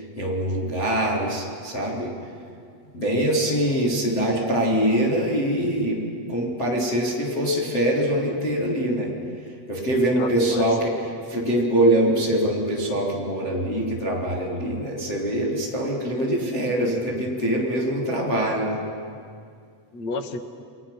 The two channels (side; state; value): right; late; 8.0 ms